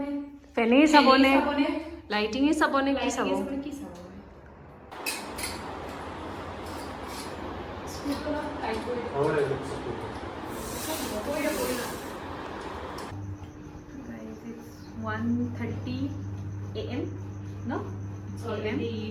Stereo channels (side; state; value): both; identical; correlation 1.00